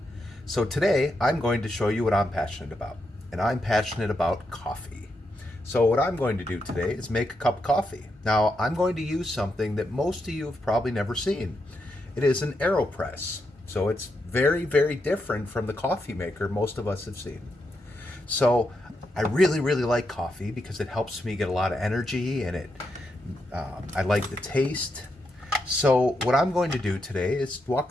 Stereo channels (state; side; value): normal; both; correlation 0.83